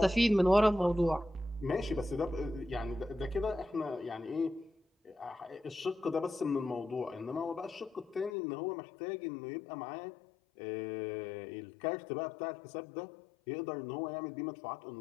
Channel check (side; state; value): right; drops out; at 8.3 s